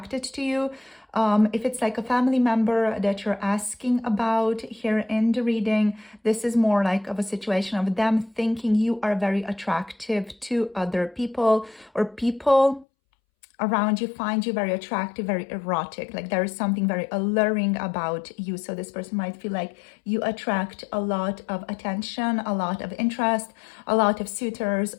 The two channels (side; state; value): right; drops out; at 12.9 s